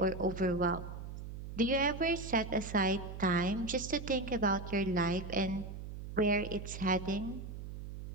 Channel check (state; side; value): noise; right; hum, 9 dB below the sound